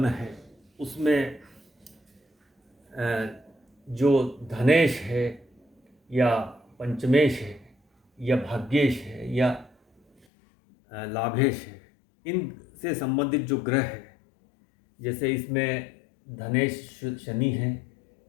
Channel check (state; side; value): drops out; right; at 10.2 s